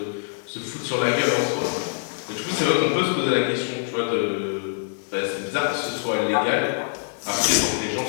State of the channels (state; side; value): silent; right; digital silence